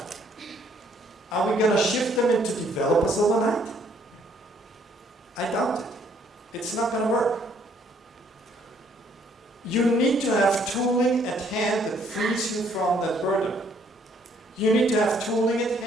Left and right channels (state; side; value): normal; both; correlation 0.65